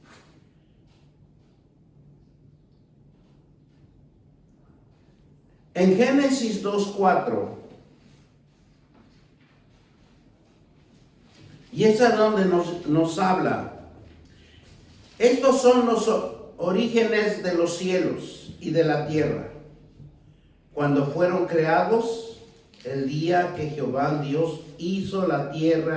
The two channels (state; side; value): identical; both; correlation 1.00